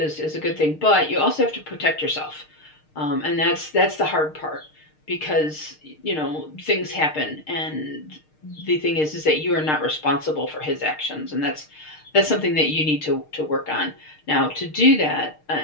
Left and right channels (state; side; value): late; right; 6.5 ms